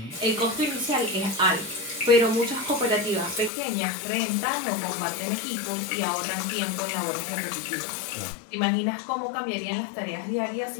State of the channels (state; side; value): drops out; right; at 3.5 s